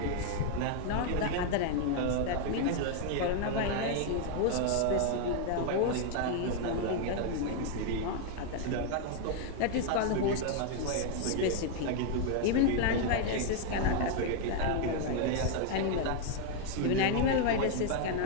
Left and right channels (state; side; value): different; both; correlation 0.01